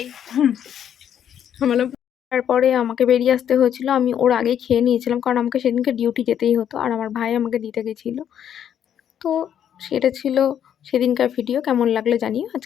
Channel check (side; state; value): right; quieter; 9.4 dB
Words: তারপরে আমাকে বেরিয়ে আসতে হয়েছিল। আমি ওর আগেই খেয়ে নিয়েছিলাম, কারণ আমাকে সেদিনকে ডিউটি যেতেই হতো, আর আমার ভাই আমাকে দিতে গেছিলো। তো সেটা ছিল সেদিনকার ভিডিও। কেমন লাগলো জানিও।